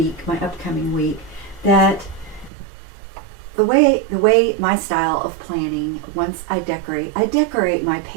my upcoming week, that the way my style of planning, once I decorate my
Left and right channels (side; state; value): left; drops out; at 2.5 s